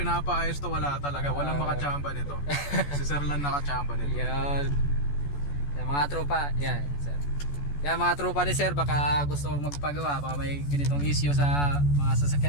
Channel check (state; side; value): late; right; 14 ms